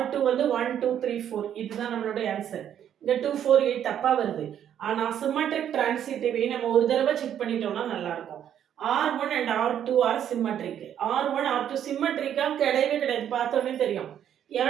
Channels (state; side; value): quieter; left; 9.8 dB